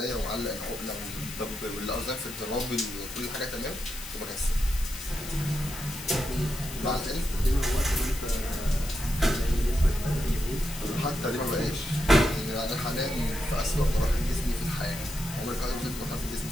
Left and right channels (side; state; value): left; noise; hiss, 11 dB below the sound